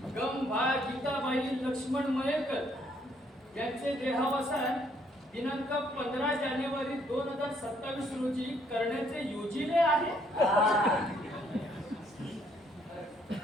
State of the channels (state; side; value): normal; both; correlation 0.67